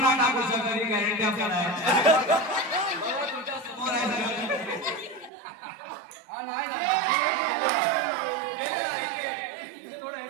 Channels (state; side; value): drops out; left; at 5.3 s